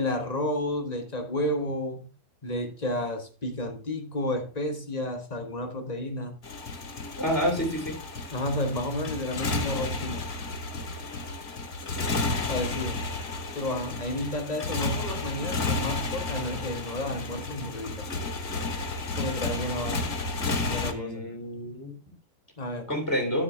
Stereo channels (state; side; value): late; right; 1.9 ms